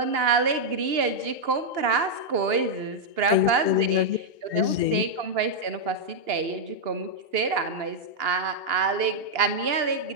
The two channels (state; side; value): late; left; 2.9 ms